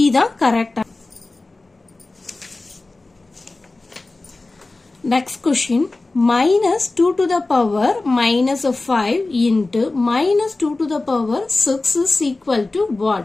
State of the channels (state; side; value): quieter; right; 3.2 dB